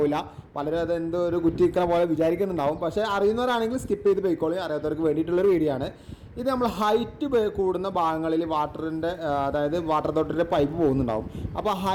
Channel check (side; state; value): both; identical; correlation 1.00